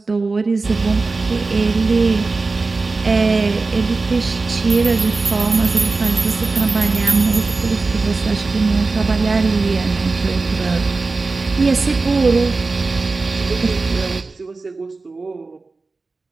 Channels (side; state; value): left; quieter; 3.8 dB